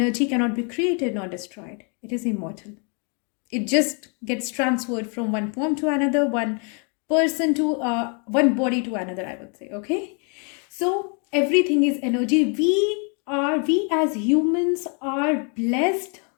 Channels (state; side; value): quieter; right; 37.7 dB